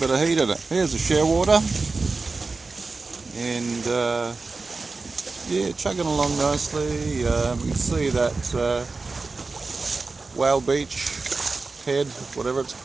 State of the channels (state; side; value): quieter; left; 3.9 dB